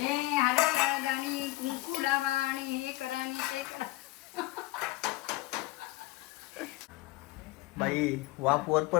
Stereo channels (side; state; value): right; quieter; 19.4 dB